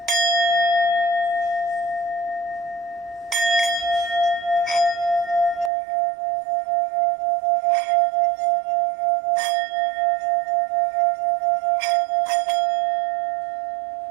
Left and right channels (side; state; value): left; drops out; at 5.7 s